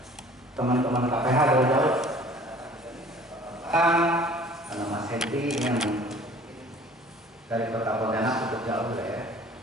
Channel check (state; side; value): normal; both; correlation 0.50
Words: Teman-teman KPH dari jauh. Karena Mas Henry yang dari Kota Pontianak cukup jauh ya.